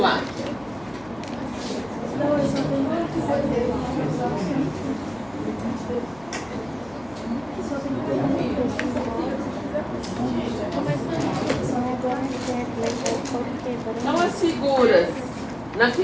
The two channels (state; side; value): noise; left; hum, 24 dB below the sound